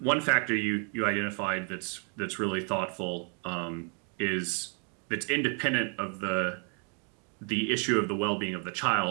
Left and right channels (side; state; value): left; quieter; 39.6 dB